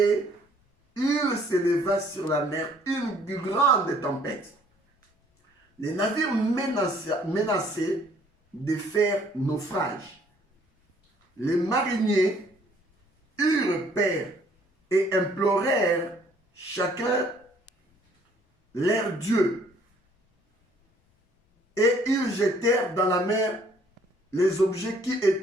il s'éleva sur la mer une grande tempête. Les navires menaçaient de faire naufrage. Les mariniers eurent peur et implorèrent chacun leur Dieu. Et ils jetèrent dans la mer les objets qui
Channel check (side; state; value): both; normal; correlation 0.61